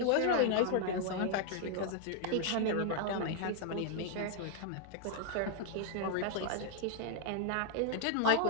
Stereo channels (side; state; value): both; different; correlation 0.00